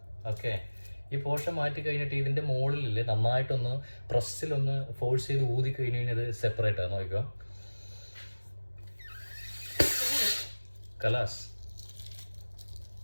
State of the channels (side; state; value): both; inverted; correlation -1.00